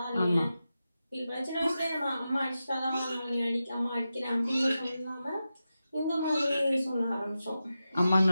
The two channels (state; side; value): inverted; both; correlation -0.91